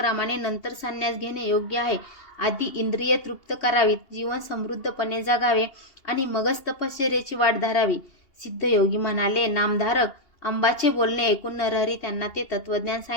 नंतर संन्यास घेणे योग्य आहे. आधी इंद्रिय तृप्त करावीत, जीवन समृद्धपणे जगावे आणि मगच तपश्चर्येची वाट धरावी. सिद्धयोगी म्हणाले, नामधारक. अंबाचे बोलणे ऐकून नरहरी त्यांना ते तत्वज्ञान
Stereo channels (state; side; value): late; right; 2.8 ms